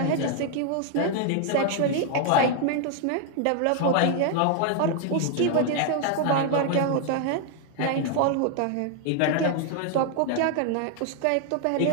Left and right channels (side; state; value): both; different; correlation 0.00